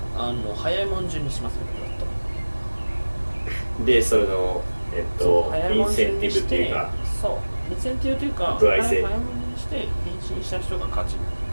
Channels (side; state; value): both; inverted; correlation -1.00